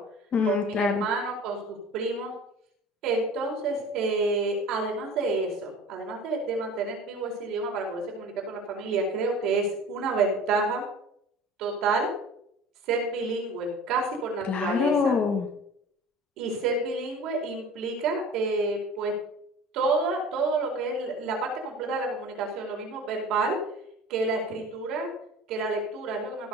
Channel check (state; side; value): normal; both; correlation 0.41